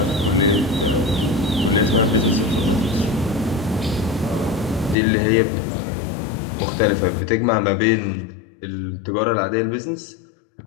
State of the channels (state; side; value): drops out; right; at 5.0 s